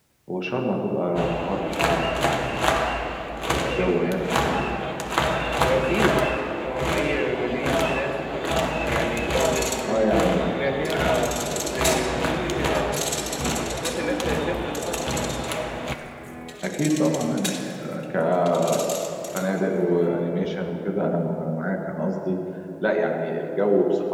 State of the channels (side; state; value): both; identical; correlation 1.00